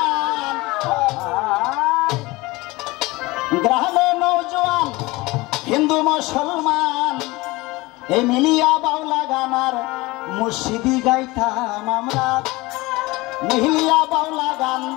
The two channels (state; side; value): quieter; right; 21.7 dB